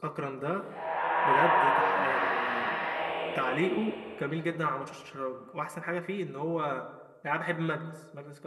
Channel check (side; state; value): both; identical; correlation 1.00